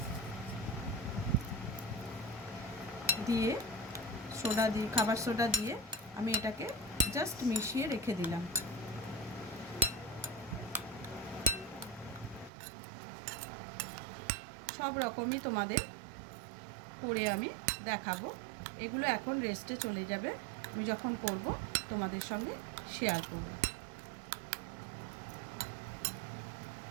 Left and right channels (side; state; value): left; drops out; at 12.5 s